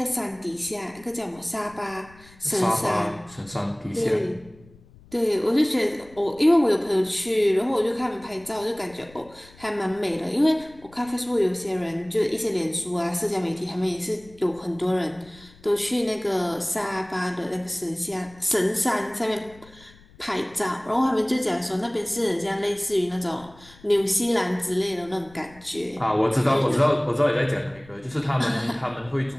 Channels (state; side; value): noise; left; rumble, 25 dB below the sound